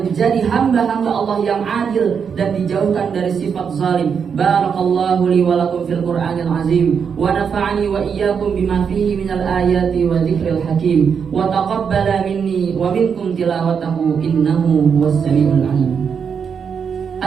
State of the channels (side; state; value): left; quieter; 6.7 dB